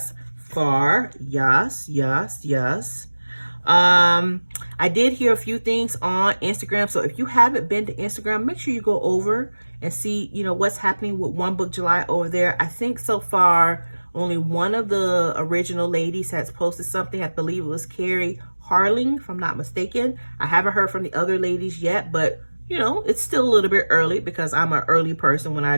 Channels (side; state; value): both; inverted; correlation -1.00